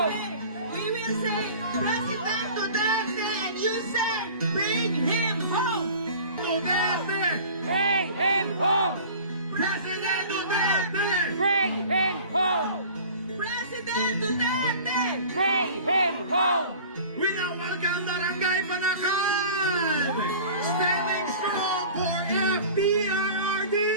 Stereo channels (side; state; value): both; inverted; correlation -0.42